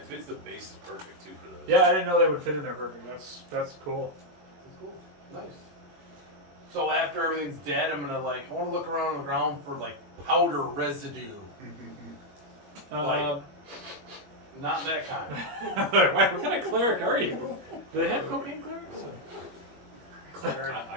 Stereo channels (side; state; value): left; late; 21 ms